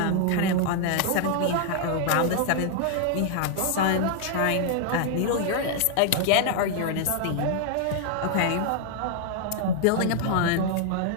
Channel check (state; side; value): different; both; correlation 0.00